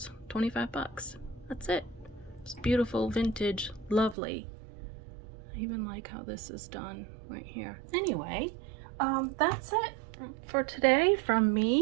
25 bucks. That's it. It's beautiful, vintage, lovely. I even like how this is done right here. Anyway, that's it for today from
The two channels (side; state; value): left; drops out; at 4.2 s